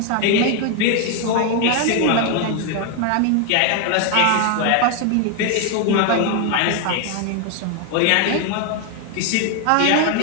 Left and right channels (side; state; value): both; different; correlation 0.01